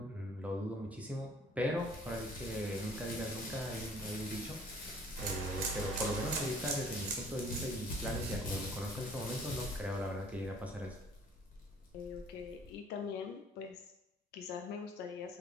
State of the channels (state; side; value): normal; both; correlation 0.55